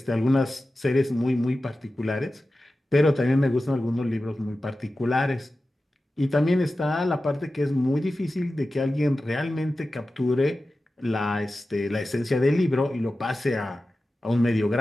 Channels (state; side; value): normal; both; correlation 0.94